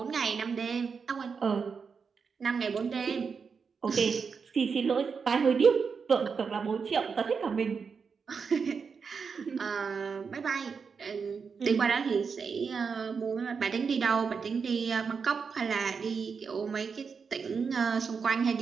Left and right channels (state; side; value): quieter; left; 5.7 dB